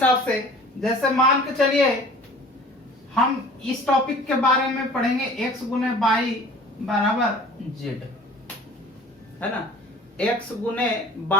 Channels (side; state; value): both; normal; correlation 0.46